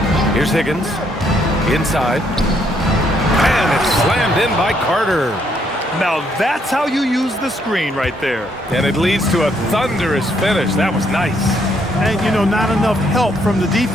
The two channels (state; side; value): normal; both; correlation 0.71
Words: Here's Higgins. Inside. And it's slammed in by Carter. Now that's how you use the screen right there. And it leads to a thunderous finish. That was nice. And, you know, not enough help from the